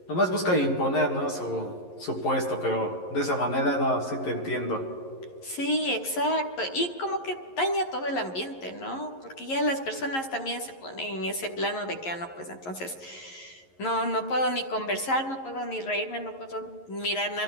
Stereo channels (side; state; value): right; late; 11 ms